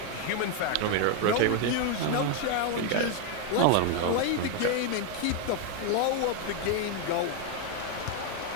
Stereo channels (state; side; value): different; both; correlation 0.01